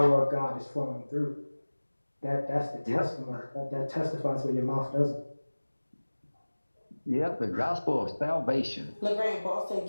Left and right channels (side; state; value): both; inverted; correlation -1.00